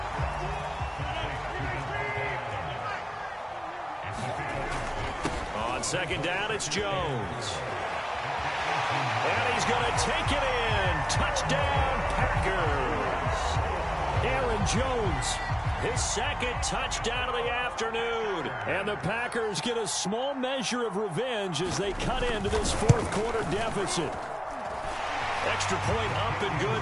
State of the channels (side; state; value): both; identical; correlation 1.00